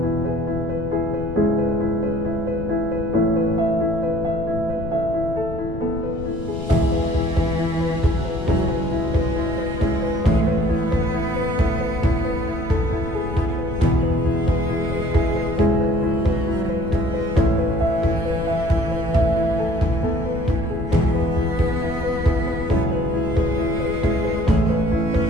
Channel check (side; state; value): left; noise; rumble, 8 dB below the sound